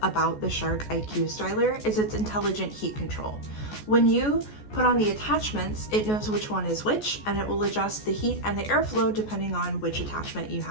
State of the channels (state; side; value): late; right; 14 ms